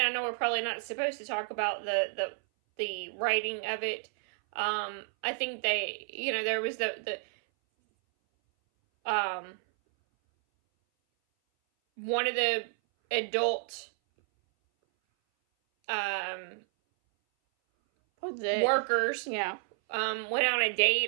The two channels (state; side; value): silent; left; 57 dB below the other